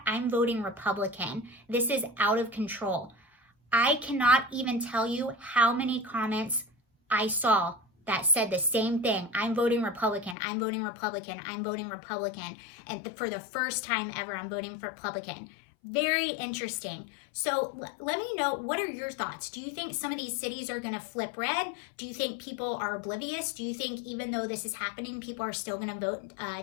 I'm voting Republican. This is out of control. I cannot even tell you how many comments I saw that said the same thing. I'm voting Republican. I'm voting Republican. I'm voting Republican. And for the first time ever, I'm voting for Republican. Very interesting. So let me know, what are your thoughts? Do you think some of these cities are going to flip red? Do you think people are oblivious? Do you think even though this is happening, people are still going to vote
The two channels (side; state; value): right; drops out; at 10.4 s